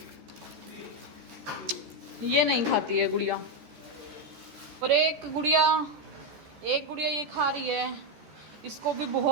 ये नहीं खाती है गुड़िया, और एक गुड़िया ये खा रही है, इसको भी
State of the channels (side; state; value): left; late; 14 ms